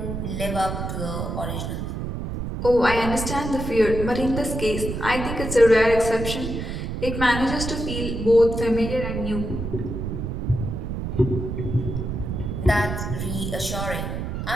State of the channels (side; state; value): right; noise; rumble, 4 dB below the sound